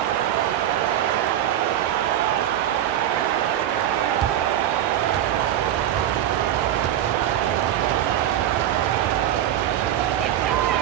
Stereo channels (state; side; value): quieter; left; 11.5 dB